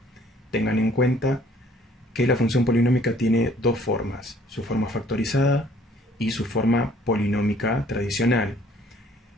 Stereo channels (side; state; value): both; normal; correlation 0.58